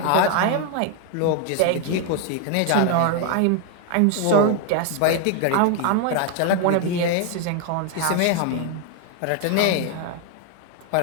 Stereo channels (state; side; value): different; both; correlation 0.01